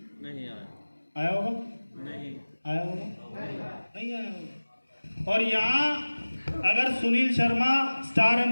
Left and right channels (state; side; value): inverted; both; correlation -1.00